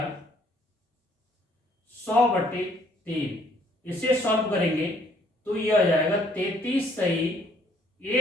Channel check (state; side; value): normal; both; correlation 0.63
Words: 100/3। इसे सॉल्व करेंगे तो ये आ जाएगा 33 सही